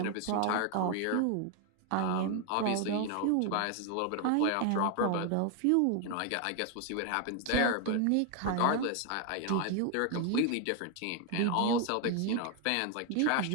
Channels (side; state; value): both; different; correlation 0.00